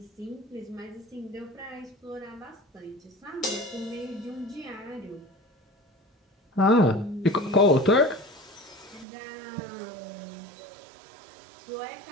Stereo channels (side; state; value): left; drops out; at 9.1 s